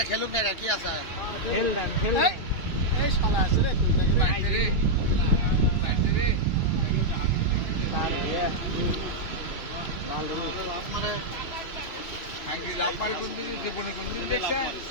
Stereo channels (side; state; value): right; late; 2.6 ms